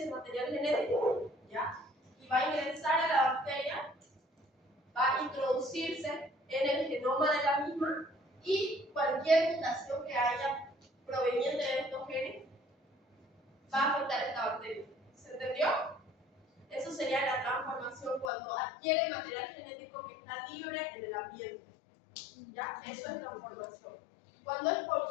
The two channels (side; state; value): right; drops out; at 18.3 s